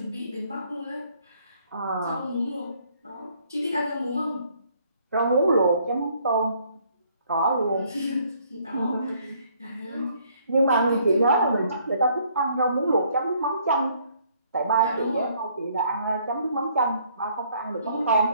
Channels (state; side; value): inverted; both; correlation -0.64